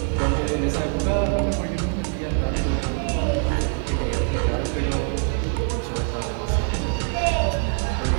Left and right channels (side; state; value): left; quieter; 35.4 dB